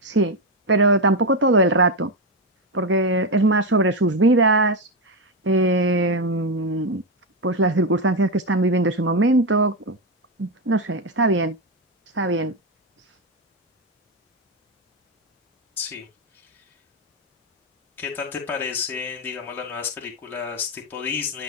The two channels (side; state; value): both; normal; correlation 0.09